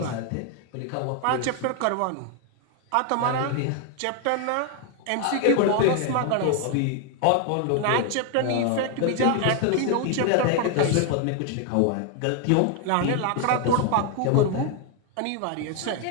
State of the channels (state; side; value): different; both; correlation 0.01